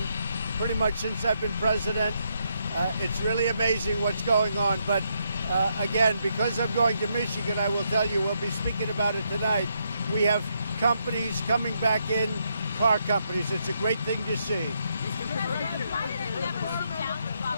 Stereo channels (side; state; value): both; inverted; correlation -0.78